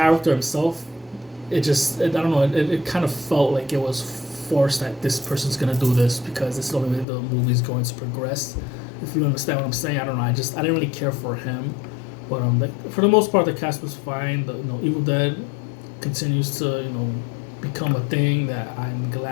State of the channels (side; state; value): right; drops out; at 7.1 s